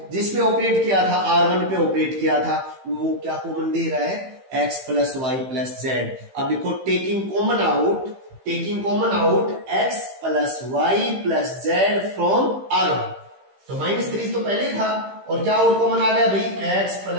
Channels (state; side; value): late; left; 15 ms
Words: जिसपे ऑपरेट किया था, R1 पे ऑपरेट किया था, वो क्या कॉमन दे रहा है, x plus y plus z. अब देखो taking common out x plus y plus z from R1, तो -3 तो पहले था, और क्या और कॉमन आ गया भाई, x